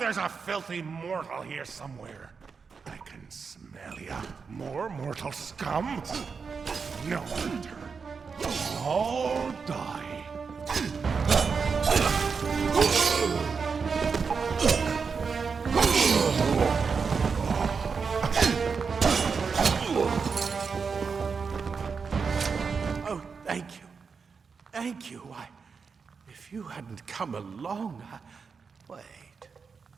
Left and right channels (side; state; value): left; quieter; 5.4 dB